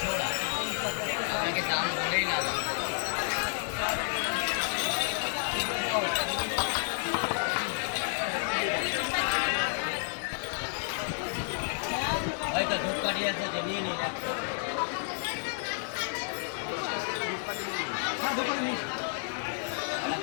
জোড়া, আপনাকে দাম বলেই না। হয়তো ধূপকাঠি আছে যে নিয়ে নিন।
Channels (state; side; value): silent; right; digital silence